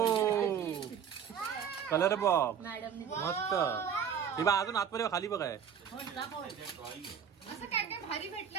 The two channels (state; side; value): quieter; left; 7.8 dB